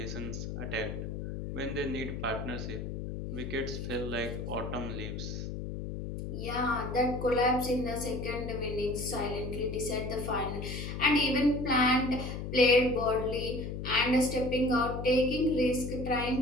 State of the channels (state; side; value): noise; left; hum, 6 dB below the sound